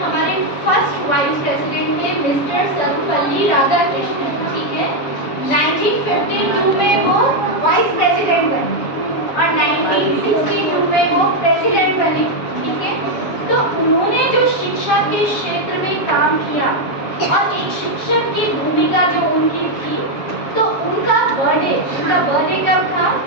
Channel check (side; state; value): right; late; 7.2 ms